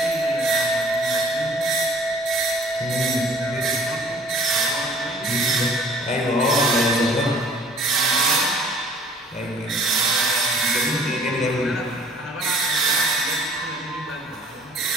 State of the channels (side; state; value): both; normal; correlation 0.53